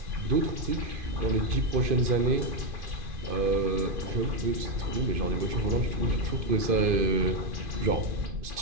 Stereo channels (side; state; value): left; late; 2.5 ms